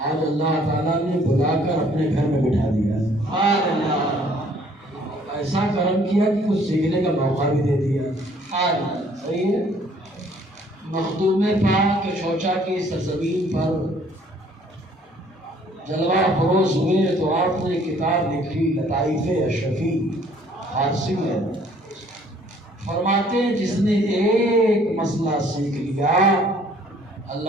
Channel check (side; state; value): both; normal; correlation 0.60